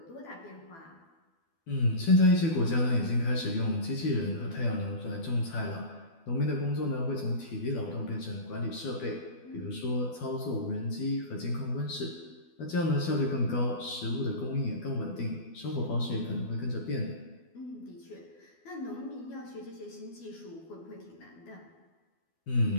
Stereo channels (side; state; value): right; late; 12 ms